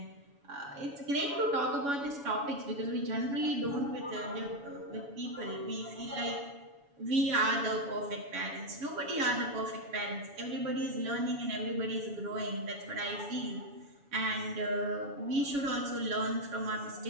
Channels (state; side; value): late; left; 7.1 ms